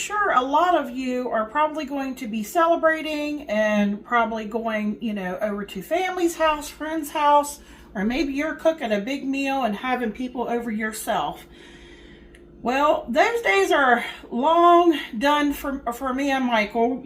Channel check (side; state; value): both; identical; correlation 1.00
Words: a lot of you are probably going to be celebrating and probably going, over to family's house, friend's house, or maybe you're cooking a big meal and having people over yourself. Well, those days are long done for me and Michael,